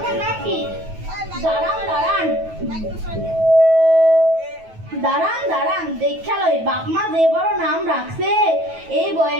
নাম কি? দাঁড়ান দাঁড়ান দাঁড়ান দাঁড়ান দেখা লই, বাপ মা যে বড় নাম রাখছে এই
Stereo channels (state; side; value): late; left; 9.2 ms